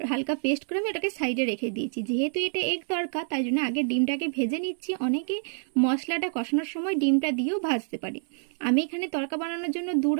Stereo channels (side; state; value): left; silent; digital silence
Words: হালকা পেস্ট করে আমি ওটাকে সাইডে রেখে দিয়েছি। যেহেতু এটা এগ তরকা তাই জন্য আগে ডিমটাকে ভেজে নিচ্ছি। অনেকে মশলাটা কষানোর সময় ডিমটা দিয়েও ভাজতে পারে। আমি এখানে তরকা বানানোর জন্য 2